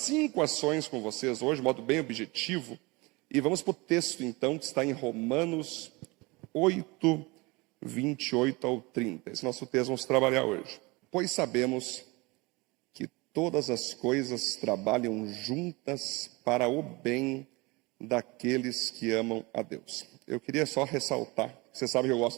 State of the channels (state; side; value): quieter; left; 24.8 dB